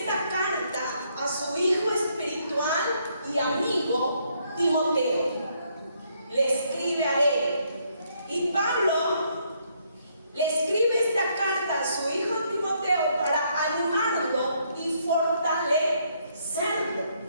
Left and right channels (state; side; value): inverted; both; correlation -0.72